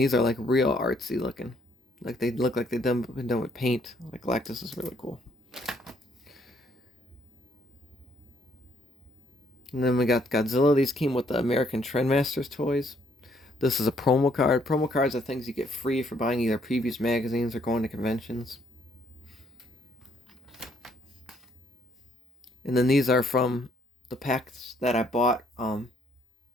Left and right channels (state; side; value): normal; both; correlation 0.68